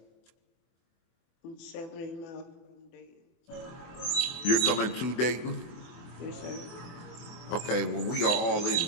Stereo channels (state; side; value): late; right; 24 ms